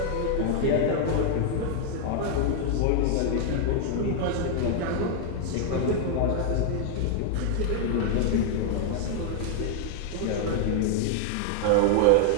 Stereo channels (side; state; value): both; different; correlation -0.01